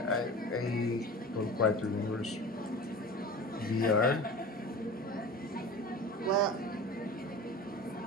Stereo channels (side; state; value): both; normal; correlation 0.35